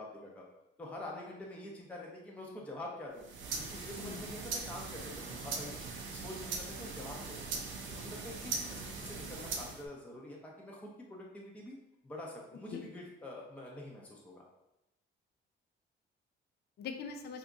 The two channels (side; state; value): both; normal; correlation 0.25